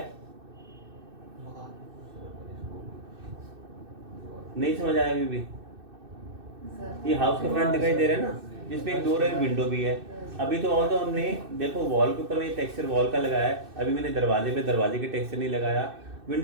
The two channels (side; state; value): left; late; 2.6 ms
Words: नहीं समझ आया अभी भी? ये हाउस का फ्रंट दिखाई दे रहा है ना, जिसमें एक डोर है, विंडो भी है। अभी तो और तो हमने देखो वॉल के ऊपर में टेक्सचर वॉल का लगाया है, अभी मैंने दरवाजे पे दरवाजे के टेक्सचर नहीं लगाया,